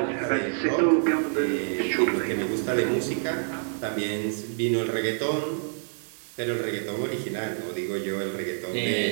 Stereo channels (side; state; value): left; silent; digital silence